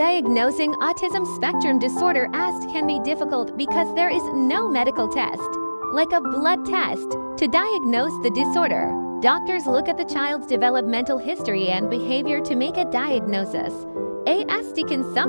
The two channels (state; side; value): inverted; both; correlation -1.00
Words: autism spectrum disorder (ASD) can be difficult because there is no medical test, like a blood test, to diagnose the disorder. Doctors look at the child's developmental history and behavior to make a diagnosis. ASD can